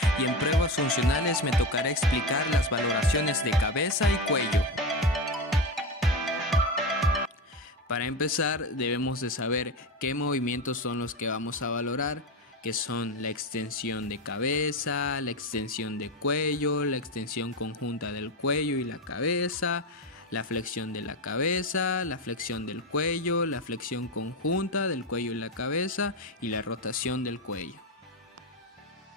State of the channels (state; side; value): normal; both; correlation 0.18